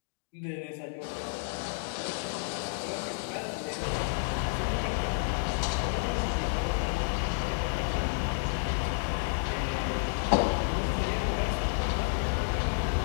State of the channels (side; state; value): right; silent; digital silence